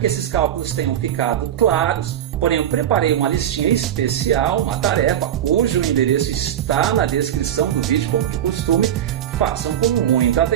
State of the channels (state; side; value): quieter; left; 10.6 dB